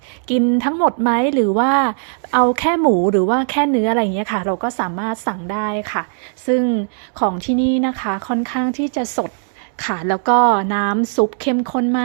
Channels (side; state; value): left; silent; 67 dB below the other